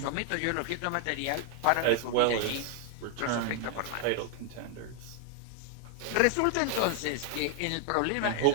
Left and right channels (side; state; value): both; different; correlation 0.00